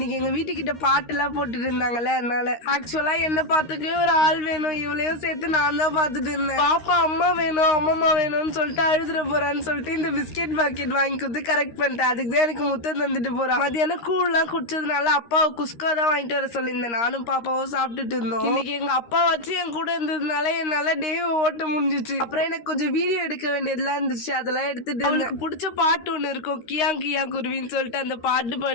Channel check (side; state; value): right; late; 13 ms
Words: எங்க வீட்டுக்கிட்ட பாட்டு எல்லாம் போட்டுட்டு இருந்தாங்கல்ல, அதனால ஆக்சுவலா என்ன பார்த்துக்கவே ஒரு ஆள் வேணும், இவளையும் சேர்த்து நான் தான் பாத்துட்டு இருந்தேன். பாப்பா அம்மா வேணும் அம்மம்மா வேணும்னு சொல்லிட்டு அழுதுற போறான்னு சொல்லிட்டு இந்த பிஸ்கெட் பாக்கெட் வாங்கி கொடுத்து கரெக்ட் பண்ணிட்டேன். அதுக்கு தான் எனக்கு முத்தம் தந்துட்டு போறான். மதியானம் கூழ்லாம் குடிச்சதுனால அப்பாவை குஸ்கா தான் வாங்கிட்டு வர சொல்லியிருந்தேன். நானும் பாப்பாவும் சாப்பிட்டுட்டு இருந்தோம். இன்னைக்கு எங்க அப்பா வச்சு என் கூட இருந்ததுனால என்னால டே ஓட்ட முடிஞ்சிச்சு. அப்புறம் எனக்கு கொஞ்சம் வீடியோ எடுக்க வேண்டியதெல்லாம் இருந்துச்சு, அதெல்லாம் எடுத்துட்டு அவளுக்கு பிடிச்ச பாட்டு ஒண்ணு இருக்கும், கியா கியா குருவின்னு சொல்லிட்டு அந்த பாட்டு